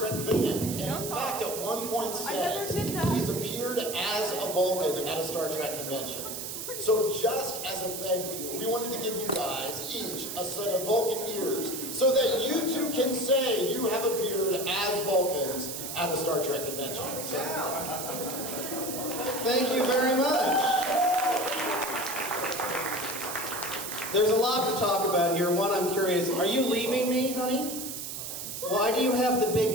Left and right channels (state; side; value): noise; right; hiss, 6 dB below the sound